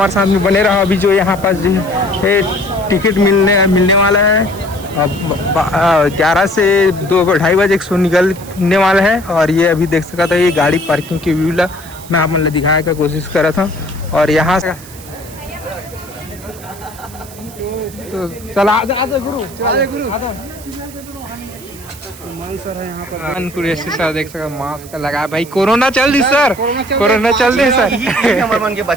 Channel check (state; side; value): noise; right; hiss, 18 dB below the sound